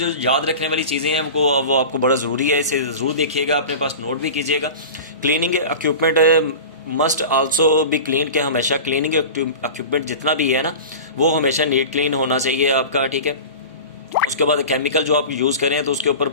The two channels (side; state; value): both; inverted; correlation -0.33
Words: याद रखने वाली चीज़ें हैं वो आपको बड़ा ज़रूरी है, इसे ज़रूर देखिएगा, अपने पास नोट भी कीजिएगा। Cleaning equipment must also be clean, के हमेशा क्लीनिंग इक्विपमेंट जितना भी है ना वो हमेशा नीट क्लीन होना चाहिए आपका। ठीक है, उसके बाद केमिकल जो आप यूज़ करें तो उसके ऊपर